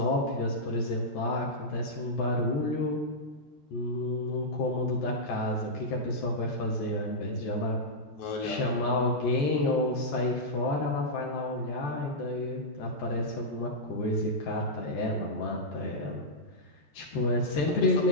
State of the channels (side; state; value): right; late; 14 ms